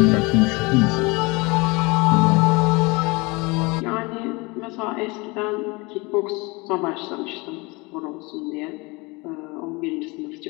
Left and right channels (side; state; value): right; quieter; 25.9 dB